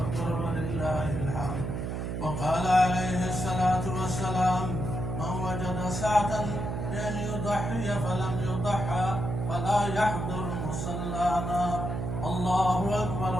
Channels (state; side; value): noise; right; hum, 3 dB below the sound